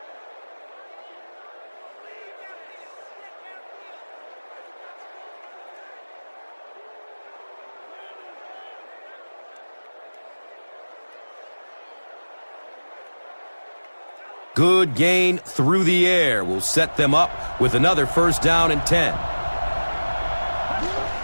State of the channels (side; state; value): both; inverted; correlation -1.00